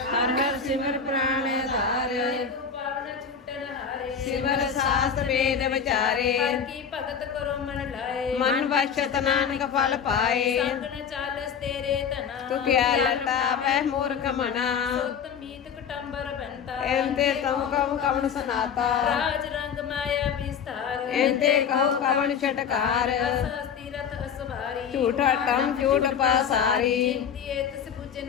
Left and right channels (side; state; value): right; quieter; 7.0 dB